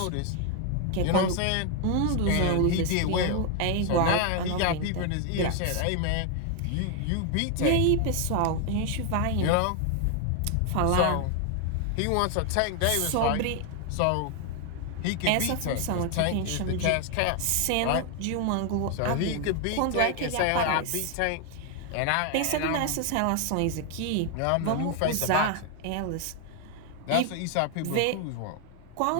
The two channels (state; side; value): different; both; correlation 0.00